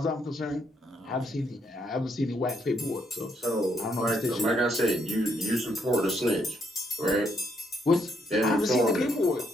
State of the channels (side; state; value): both; normal; correlation 0.73